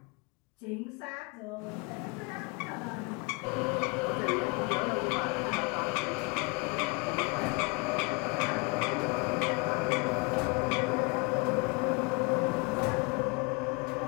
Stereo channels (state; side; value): quieter; right; 29.5 dB